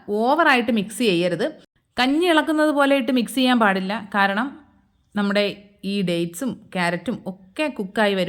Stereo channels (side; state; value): both; identical; correlation 1.00